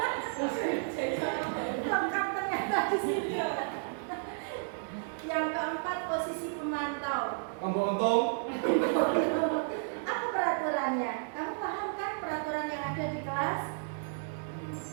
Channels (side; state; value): left; silent; digital silence